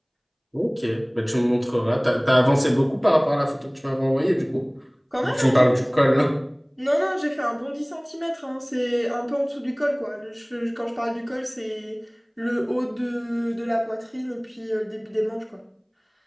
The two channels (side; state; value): both; identical; correlation 1.00